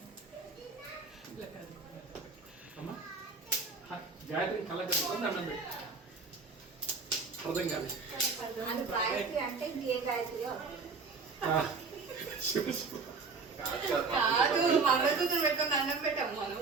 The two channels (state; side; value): quieter; left; 4.6 dB